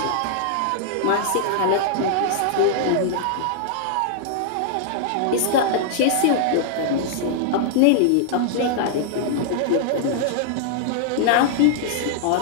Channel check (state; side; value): different; both; correlation -0.01